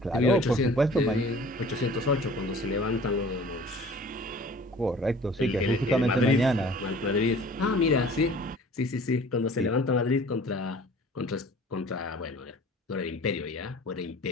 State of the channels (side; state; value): both; normal; correlation 0.47